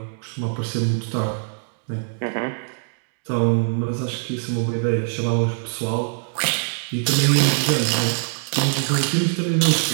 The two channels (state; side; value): silent; left; 60 dB below the other